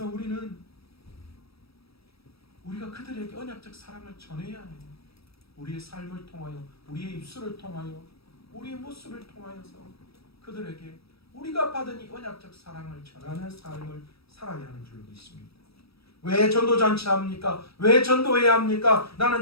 우리가 그들에게 언약적 사랑을 전해야 해요. 우리의 삶을 통하여, 우리의 입술을 통하여, 우리의 모습을 통하여서 그들에게 우리가 받은 이 언약적 사랑을 전하는 삶을 살아야 하는 줄 믿습니다. 왜 전도잔치 합니까? 왜 전도해야 합니까? 나는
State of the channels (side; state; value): right; late; 0.77 ms